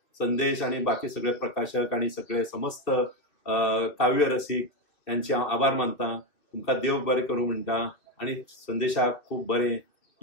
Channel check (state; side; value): late; right; 2.4 ms